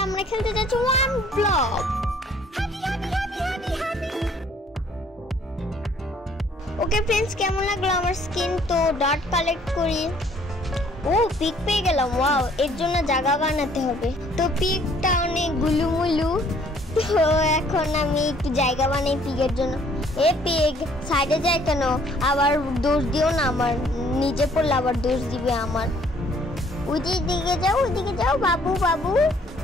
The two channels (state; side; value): normal; both; correlation 0.60